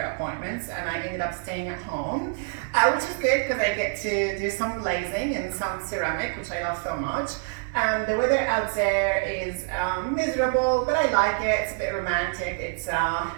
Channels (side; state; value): left; silent; 61 dB below the other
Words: appointments and I ended up staying at home, which is good because I get to do some glazing and some ceramic, which I love so much. The weather out there is miserable, but I like it. It's a bit romantic. It's